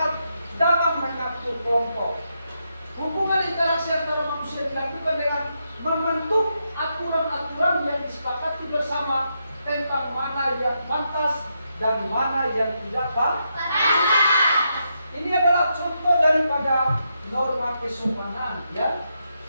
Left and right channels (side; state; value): both; inverted; correlation -0.82